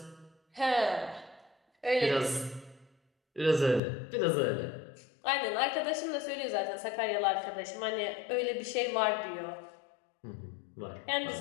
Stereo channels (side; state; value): right; drops out; at 3.8 s